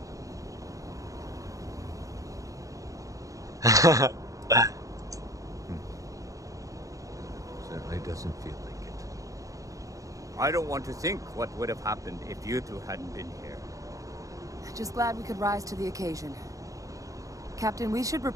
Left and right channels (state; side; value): late; left; 0.16 ms